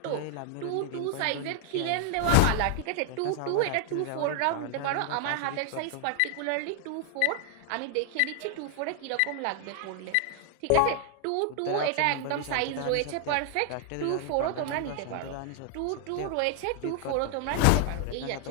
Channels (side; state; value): both; different; correlation 0.00